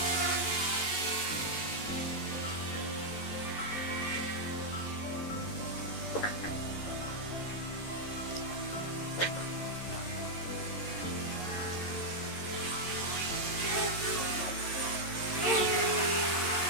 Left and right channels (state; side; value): late; right; 11 ms